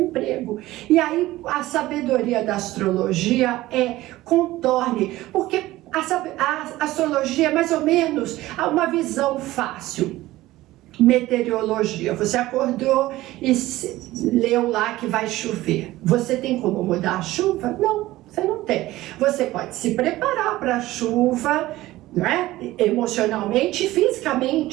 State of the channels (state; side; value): quieter; left; 17.0 dB